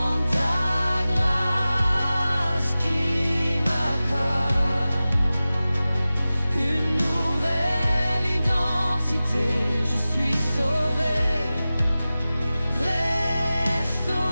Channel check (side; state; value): both; inverted; correlation -0.96